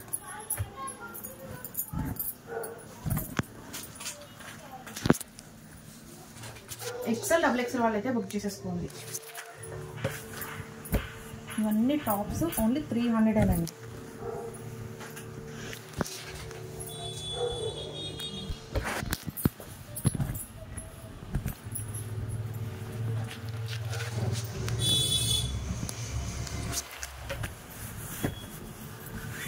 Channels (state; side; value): identical; both; correlation 1.00